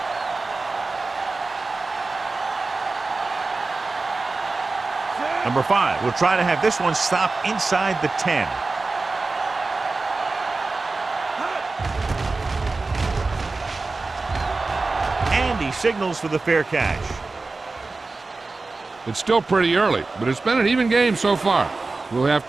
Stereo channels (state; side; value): quieter; left; 3.7 dB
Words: Number 5 will try to have this one stop inside the 10. And he signals for the fair catch. It's still pretty early, but it's been an even game so far. We'll have